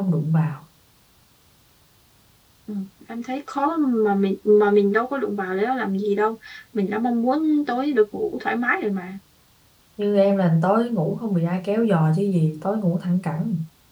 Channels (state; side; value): identical; both; correlation 1.00